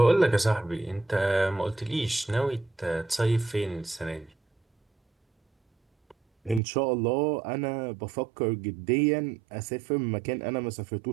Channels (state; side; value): drops out; left; at 6.6 s